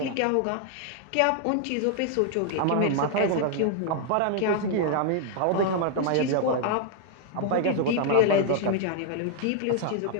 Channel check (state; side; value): different; both; correlation 0.00